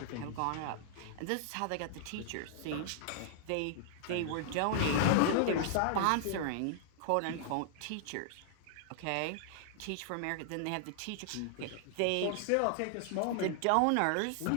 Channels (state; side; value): different; both; correlation -0.01